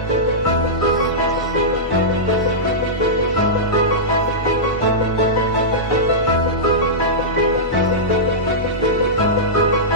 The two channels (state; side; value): normal; both; correlation -0.14